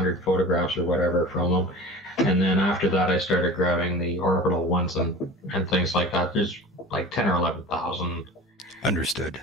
photographs or whatever from them. And then after that, I started grabbing the orbital ones and things like that. There's like 10 or 11,000. Understood.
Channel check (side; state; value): both; normal; correlation 0.37